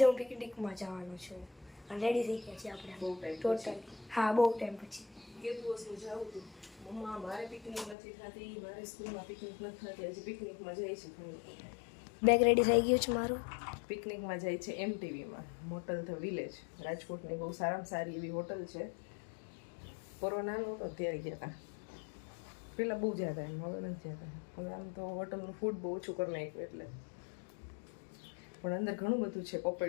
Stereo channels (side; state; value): right; drops out; at 8.0 s